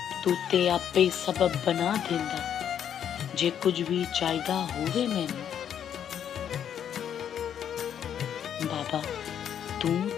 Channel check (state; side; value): quieter; right; 9.1 dB